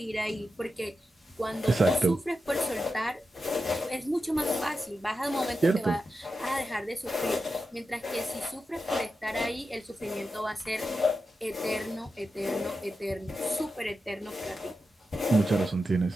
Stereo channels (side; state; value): both; normal; correlation 0.90